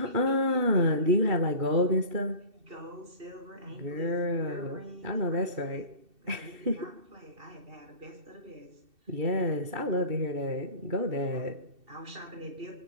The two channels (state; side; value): late; left; 2.7 ms